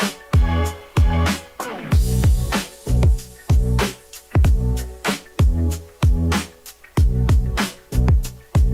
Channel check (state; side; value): identical; both; correlation 1.00